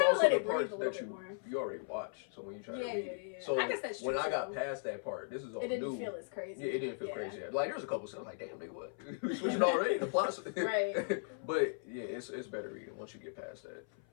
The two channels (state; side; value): silent; right; 53 dB below the other